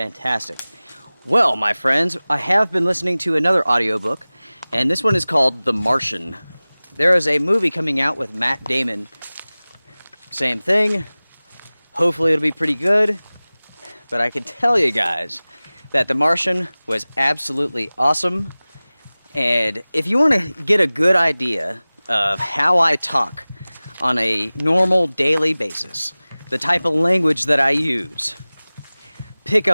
Well, my friends, I have been listening to another audiobook, and this one is called The Martian. There is a movie coming out with Matt Damon. Same thing. Hopefully it'll be pretty good. But I can tell you guys that The Martian was absolutely awesome. And if you want to get a good idea of how I talk on a normal daily basis, the type of language that I use, pick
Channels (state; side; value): inverted; both; correlation -0.99